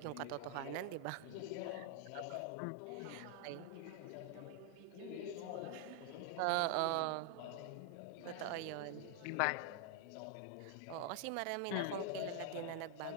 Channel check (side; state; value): both; different; correlation 0.00